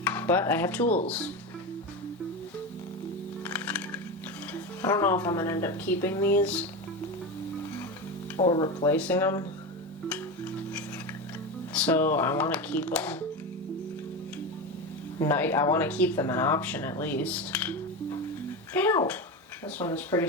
but I have tools. I don't know if I'm gonna end up keeping these or replacing them. So I want to keep them. I want to keep them an option at least. Ow! This one is pretty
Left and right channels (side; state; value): both; normal; correlation 0.20